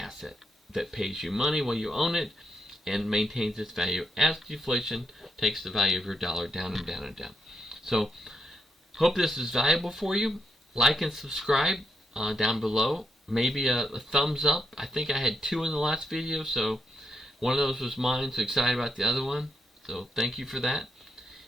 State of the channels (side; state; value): both; normal; correlation 0.79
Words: that pays you money while you own it and maintains its value as deflation takes the value of your dollar down and down and down. So, hope this is valuable for you. Like and subscribe down below. Maybe a thumbs up. I think I had 2 in the last video, so one of those was mine, so excited about the other one. So thank you for that.